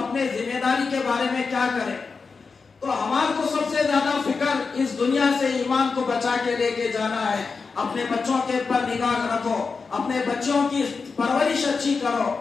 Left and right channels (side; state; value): right; quieter; 4.8 dB